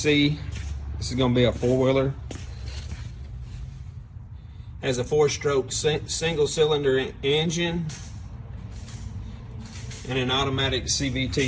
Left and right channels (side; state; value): both; identical; correlation 1.00